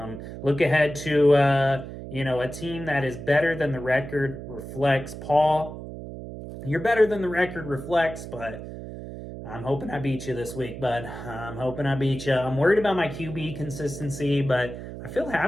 Look ahead to a team that is better than the record reflects. Paul, you're better than the record reflects, but I'm hoping I beat you this week, bud. I'm hoping I beat you. I'm worried about my QB consistency, but I feel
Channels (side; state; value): right; noise; hum, 10 dB below the sound